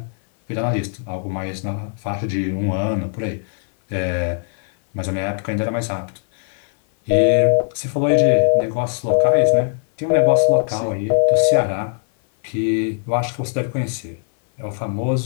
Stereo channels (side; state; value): right; silent; 58 dB below the other